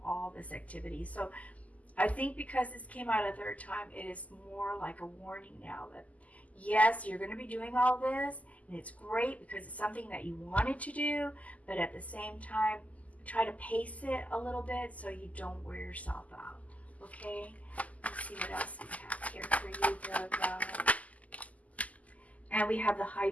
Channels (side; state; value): right; late; 0.073 ms